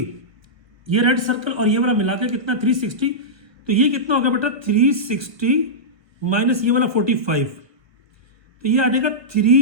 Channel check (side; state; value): left; late; 1.3 ms